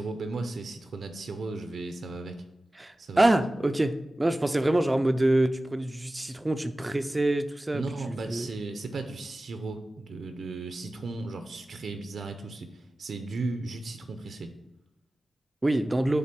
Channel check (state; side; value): normal; both; correlation 0.96